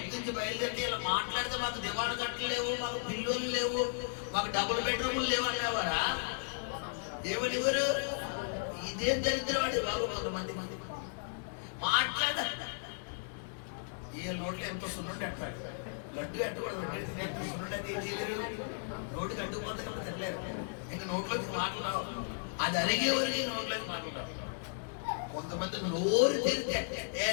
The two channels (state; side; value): silent; right; digital silence